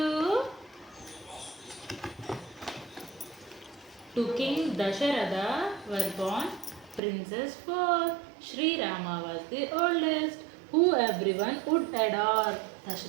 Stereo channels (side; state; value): left; drops out; at 7.0 s